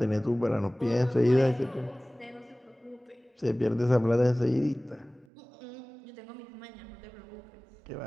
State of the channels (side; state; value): left; drops out; at 5.2 s